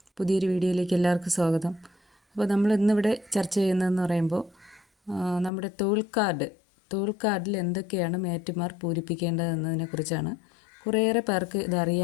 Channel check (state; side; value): drops out; right; at 5.5 s